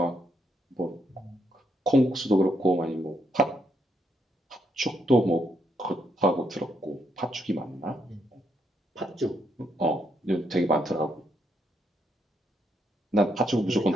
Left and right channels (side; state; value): both; normal; correlation 0.77